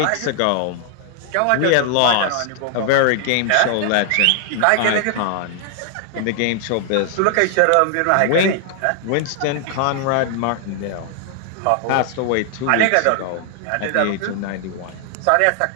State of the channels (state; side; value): different; both; correlation 0.00